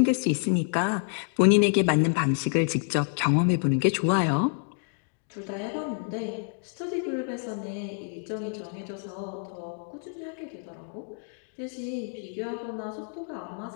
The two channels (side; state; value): right; silent; 59 dB below the other